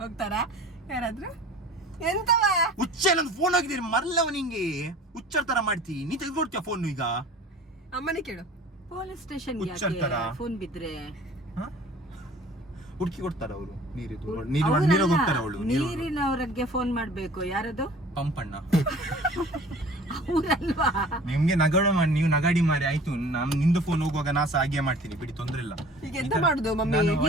ಹೋಗ್ತಾರಾ ಯಾರಾದ್ರೂ? ಎಂತವ ಹುಚ್ಚೆ ನಂದು ಫೋನ್ ಹೋಗಿದ್ದೀರಿ ಮರಲ್ಲವ ನಿಂಗೆ. ಹುಚ್ಚರ್ ತರ ಮಾಡ್ತಿ ನೀ, ತೆಗೆದುಕೊಡ್ತೀಯ ಫೋನ್ ಈಗ? ಅಮ್ಮನೇ ಕೇಳು. ಪೊಲೀಸ್ ಸ್ಟೇಷನ್ ಫೋನ್ ಬಿದ್ರೆ ಹುಡುಕಿ ಕೊಡ್ತಾರ ಅವರು. ನೀರು ಹೋಗ್ತಾರ ಅವಳು. ನೀರಿನವರಿಗೆ ಫೋನ್ ಮಾಡ್ಬೇಕು. ಯಾರದು? ಪಂಪಣ್ಣ. ಅವರಲ್ವಾ? ನಿಮ್ಗೆ ನಗಾಡು ಮಾಡಿ ನೀವು ನಗಾಡಿ ಮಾರಿ ಆಯ್ತು. ನಿಂದು ಫೋನ್ ಹೋಗುವಾಗ ನಾ ಸಹ ಹಾಗೆ ಮಾಡ್ತೀನಿ ಬಿಡಿ, ತೊಂದ್ರೆ ಇಲ್ಲ. ಈಗ ಎಂತ ಮಾಡುದು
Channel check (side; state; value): both; normal; correlation 0.46